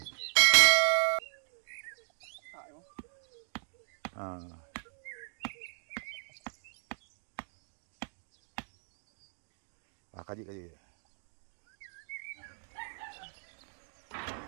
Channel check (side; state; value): left; silent; digital silence